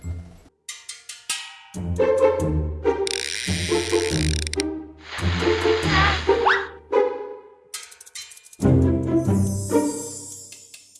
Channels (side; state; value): both; identical; correlation 1.00